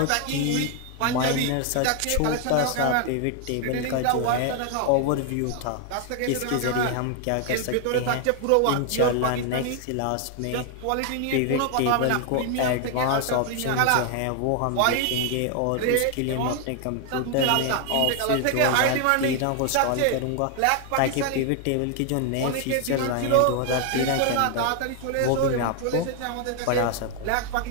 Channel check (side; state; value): both; different; correlation 0.00